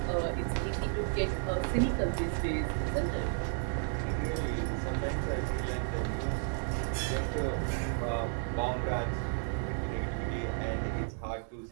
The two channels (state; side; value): silent; left; 56 dB below the other